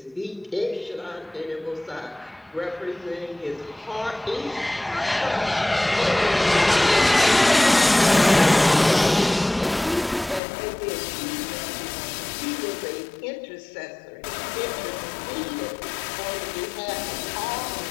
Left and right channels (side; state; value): right; drops out; at 10.4 s